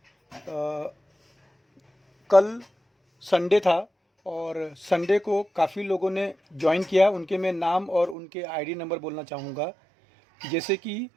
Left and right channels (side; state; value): left; drops out; at 8.2 s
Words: कल संडे था और संडे को काफ़ी लोगों ने ज्वाइन किया। उनके मैं नाम और उनके आईडी नंबर बोलना चाहूँगा। जैसे कि